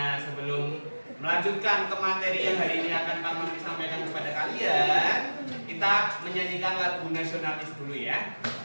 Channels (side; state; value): both; inverted; correlation -1.00